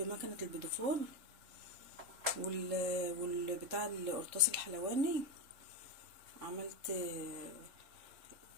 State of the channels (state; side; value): late; left; 3.7 ms